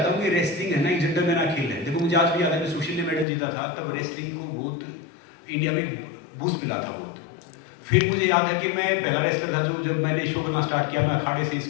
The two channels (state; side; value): drops out; right; at 3.2 s